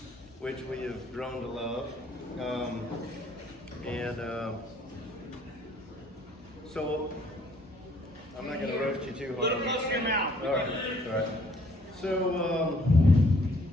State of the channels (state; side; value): normal; both; correlation 0.62